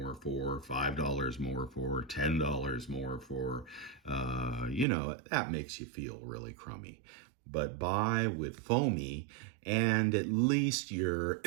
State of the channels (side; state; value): left; drops out; at 4.9 s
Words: for, $5 more for, $10 more for, that makes you feel really crummy. But buy with FOMI, and at least you're